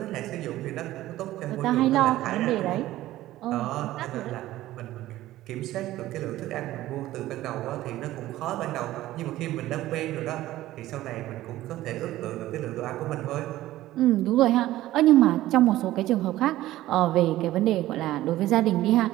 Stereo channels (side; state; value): left; quieter; 15.4 dB